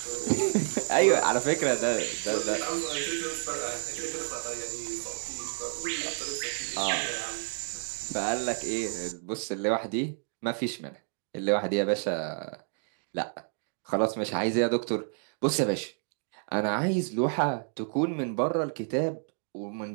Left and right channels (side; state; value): left; silent; 58 dB below the other